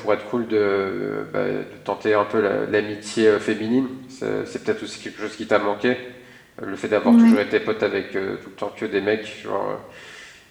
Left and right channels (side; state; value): both; identical; correlation 1.00